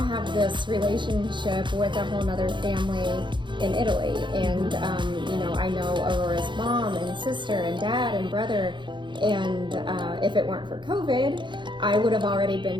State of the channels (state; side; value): late; left; 0.23 ms